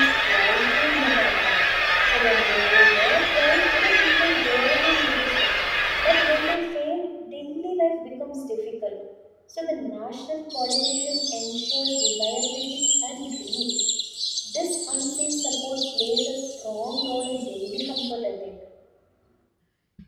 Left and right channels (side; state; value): both; identical; correlation 1.00